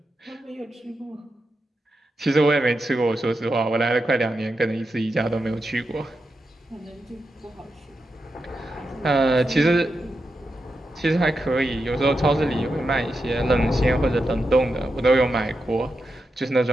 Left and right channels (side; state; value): both; normal; correlation 0.88